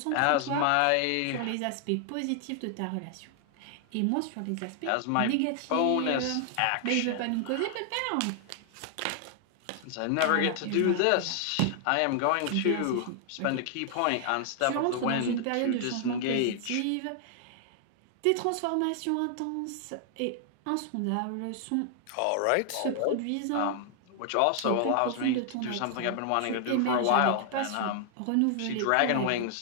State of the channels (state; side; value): different; both; correlation 0.00